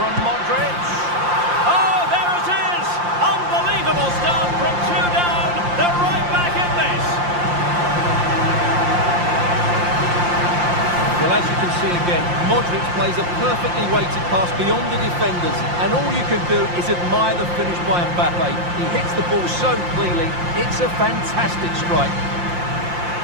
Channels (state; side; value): late; left; 5.7 ms